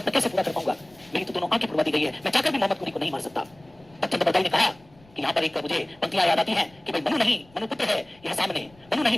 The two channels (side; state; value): left; noise; rumble, 29 dB below the sound